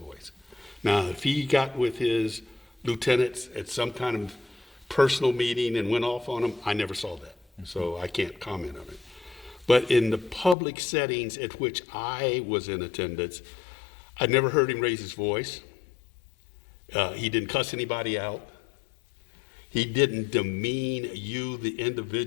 Now, if he got with his lieutenants at some kind of personal meeting and went off on them, I never saw that. So I can't comment on it. But in the public settings at which I was in attendance, I never heard him raise his voice. He didn't cuss anybody out. He didn't demean you, the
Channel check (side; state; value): right; drops out; at 10.6 s